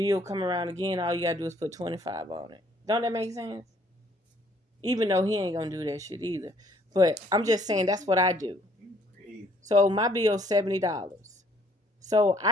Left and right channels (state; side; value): normal; both; correlation 0.62